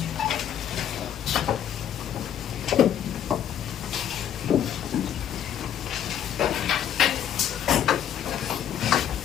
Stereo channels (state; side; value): quieter; right; 9.8 dB